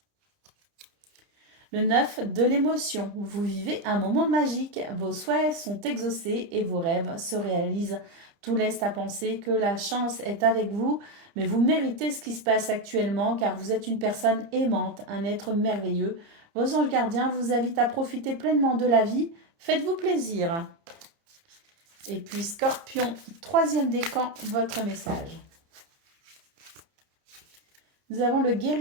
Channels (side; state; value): left; late; 30 ms